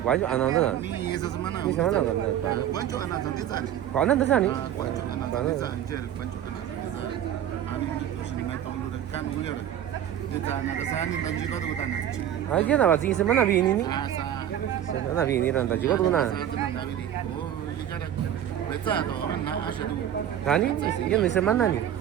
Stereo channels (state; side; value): quieter; left; 10.6 dB